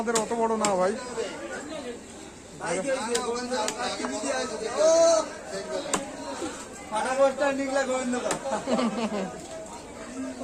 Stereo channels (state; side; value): identical; both; correlation 1.00